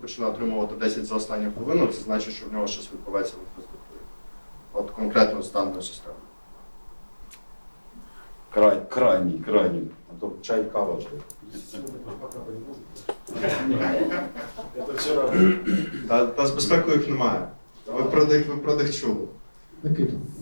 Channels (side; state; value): both; inverted; correlation -1.00